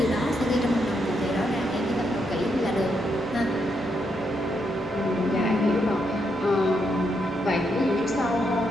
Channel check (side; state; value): both; normal; correlation 0.79